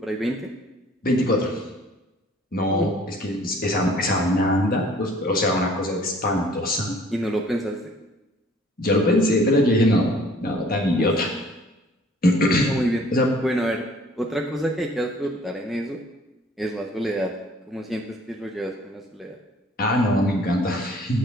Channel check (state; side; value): normal; both; correlation 0.55